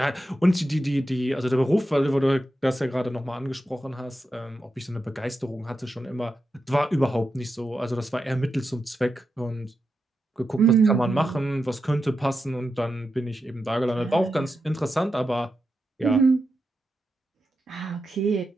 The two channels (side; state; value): both; normal; correlation 0.88